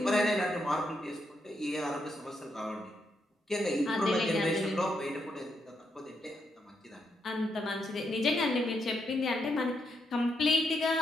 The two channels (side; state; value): both; normal; correlation 0.80